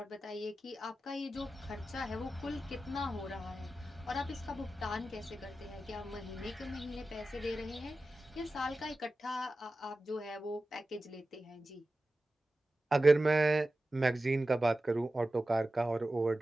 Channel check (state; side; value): normal; both; correlation 0.94